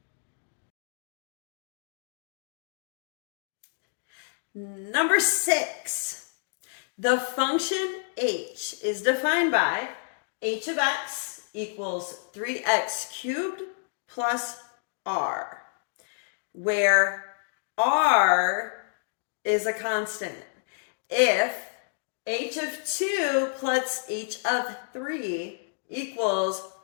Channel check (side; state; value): right; silent; digital silence